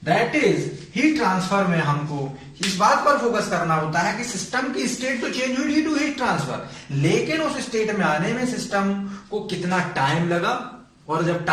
That is heat transfer में हमको इस बात पर फोकस करना होता है कि सिस्टम की स्टेट तो चेंज हुई ड्यू टू हीट ट्रांसफर, लेकिन उस स्टेट में आने में सिस्टम को कितना टाइम लगा, और जब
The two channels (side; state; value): both; identical; correlation 1.00